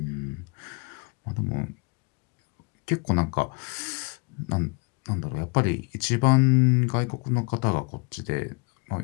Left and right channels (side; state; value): right; quieter; 31.5 dB